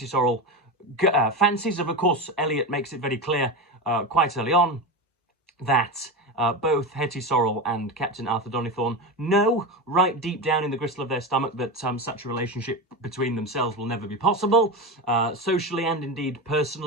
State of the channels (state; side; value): normal; both; correlation 0.20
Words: Sorrel fancies. Of course, Eliot makes it very clear quite early on that both Hetty Sorrel and Captain Arthur Donnithorne know right deep down in the gristle of their stomach that such a relationship between themselves will never be possible. Socially and indeed